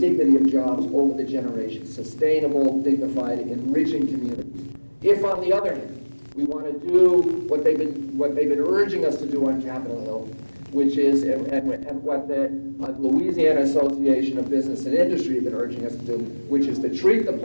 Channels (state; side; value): inverted; both; correlation -1.00